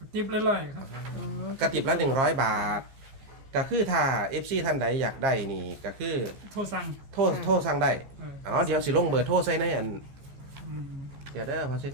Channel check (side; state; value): left; late; 15 ms